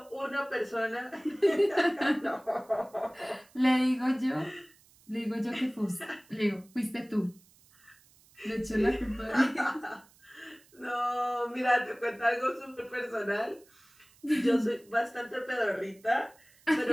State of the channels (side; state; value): right; noise; hiss, 29 dB below the sound